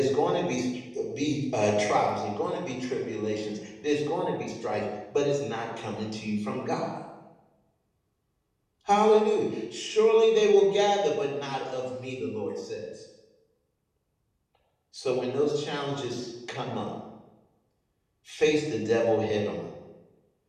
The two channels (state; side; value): identical; both; correlation 1.00